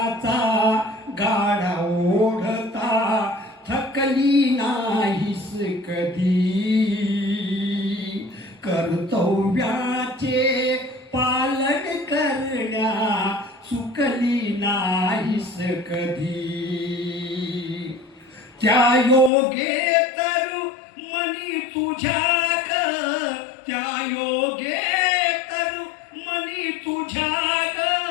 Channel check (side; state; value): right; drops out; at 19.3 s